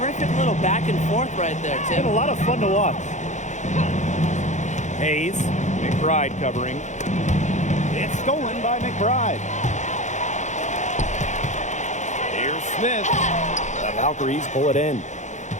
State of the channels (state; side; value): late; right; 0.35 ms